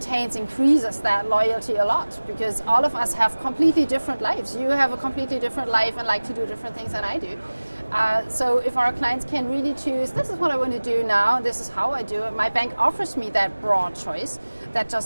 increases that loyalty a lot, because all of us have completely different lives. You have a completely different life and like to do different things than I do. So if our clients can really choose, this is what I want to do now, this is how I do it, my bank offers me that broad choice, that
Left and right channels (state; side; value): inverted; both; correlation -1.00